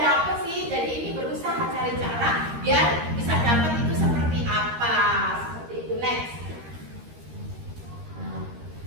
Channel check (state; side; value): late; left; 13 ms